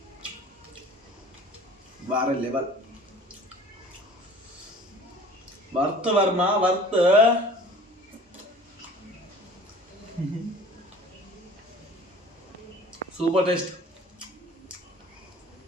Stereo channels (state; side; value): normal; both; correlation 0.46